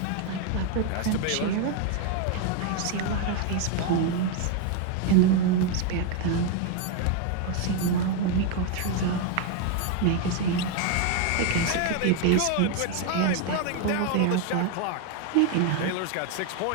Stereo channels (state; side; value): different; both; correlation 0.01